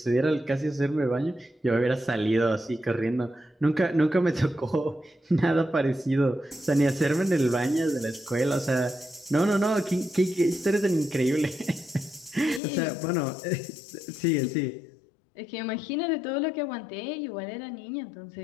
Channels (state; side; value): drops out; right; at 12.6 s